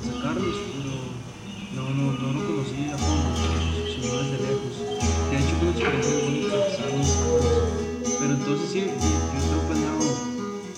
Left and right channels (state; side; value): identical; both; correlation 1.00